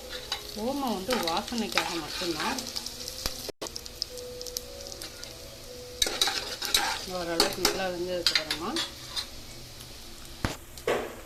ஓமம் வந்து வாசனைக்காக மட்டும்தான். ஓரளவுக்கு நல்லா வெந்ததுக்கப்புறமா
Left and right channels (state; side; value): identical; both; correlation 1.00